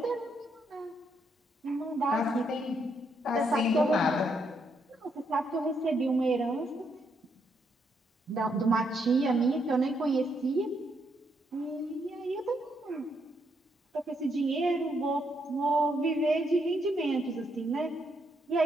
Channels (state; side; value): normal; both; correlation 0.76